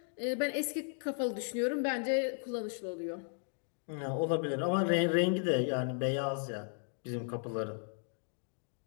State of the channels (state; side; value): silent; right; 54 dB below the other